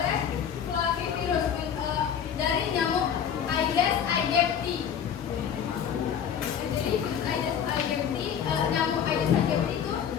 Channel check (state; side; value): quieter; right; 8.3 dB